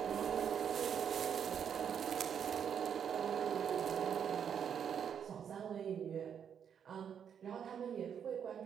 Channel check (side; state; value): left; quieter; 8.0 dB